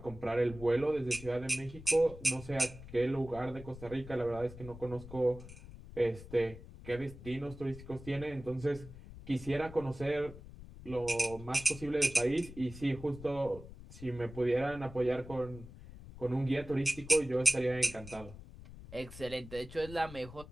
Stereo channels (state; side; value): noise; left; rumble, 15 dB below the sound